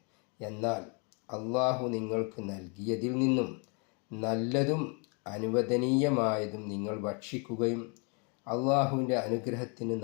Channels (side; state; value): right; quieter; 35.0 dB